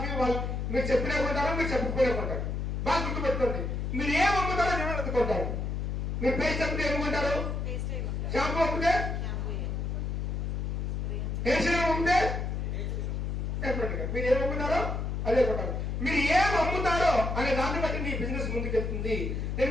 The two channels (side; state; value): left; noise; hum, 2 dB below the sound